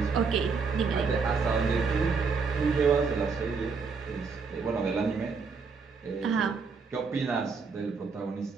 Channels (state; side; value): quieter; left; 5.0 dB